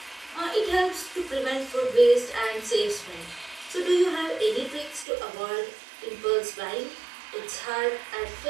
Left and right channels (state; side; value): drops out; left; at 5.1 s